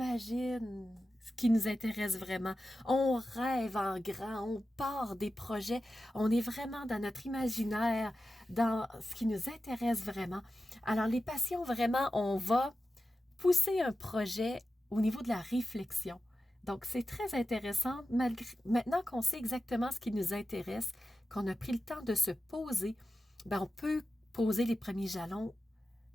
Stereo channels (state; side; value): normal; both; correlation 0.93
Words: ce qui nous intéresse vraiment. On rêve en grand, on part des projets, on est vraiment dans notre imaginaire, dans ce qui nous intéresse vraiment. Alors, les passions, vraiment, on va pousser un projet au niveau de la réflexion. Donc, c'est très intéressant. Maintenant qu'on sait exactement ce qui nous intéresse, qu'on a pris le temps de se poser, on peut poser les premiers jalons